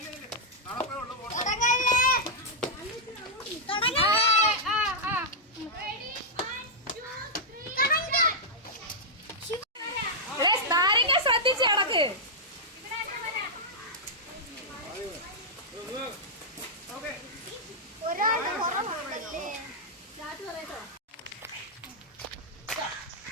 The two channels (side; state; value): both; normal; correlation -0.08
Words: നാരങ്ങ ശ്രദ്ധിച്ച് കിടക്ക്.